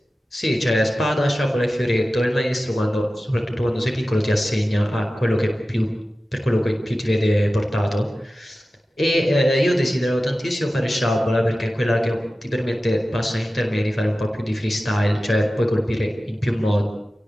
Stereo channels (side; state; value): both; normal; correlation 0.95